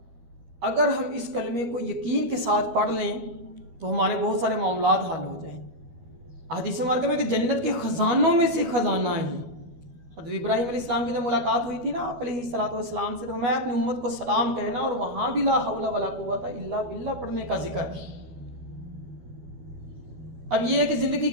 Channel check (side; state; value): left; late; 12 ms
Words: अगर हम इस कलमे को यकीन के साथ पढ़ लें तो हमारे बहुत सारे मामलात हल हो जाएं। हदीस मुबारक में कि जन्नत के ख़जानों में से ख़जाना है। हज़रत इब्राहीम अलैहिस्सलाम की जब मुलाकात हुई थी ना आप अलैहिस्सलातु वस्सलाम से, तो मैं अपनी उम्मत को सलाम कहना और वहाँ भी ला हौला वला कुव्वता इल्ला बिल्लाह पढ़ने का जिक्र है। अब ये है कि ज़िंदगी